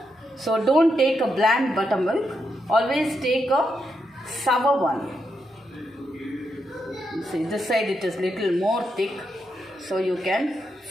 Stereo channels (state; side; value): normal; both; correlation 0.82